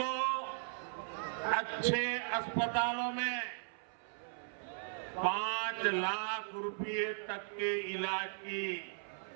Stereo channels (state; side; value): silent; left; 53 dB below the other